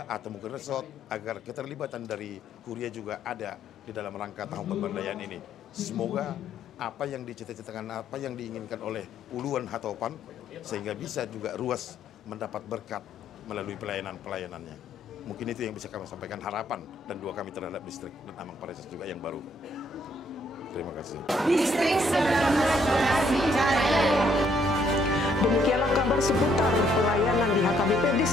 atau mungkin resort agar keterlibatan dari Huria juga ada di dalam rangka tahun pemberdayaan ini. Semoga apa yang dicita-citakan, apa yang diinginkan oleh puluhan hatopan, sehingga bisa juga ruas mendapat berkat melalui pelayanan-pelayanannya. Mungkin itu yang bisa kami sampaikan harapan dan doa kami terhadap distrik dan Amang Pareses juga yang baru. Terima kasih. Distrik 19 Bekasi Jaya. Demikianlah kabar seputar pelayanan di HKBP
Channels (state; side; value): normal; both; correlation 0.69